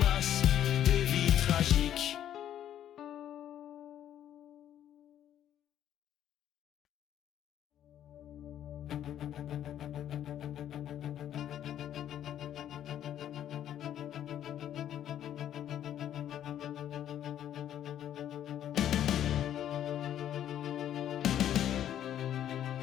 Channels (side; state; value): right; quieter; 10.8 dB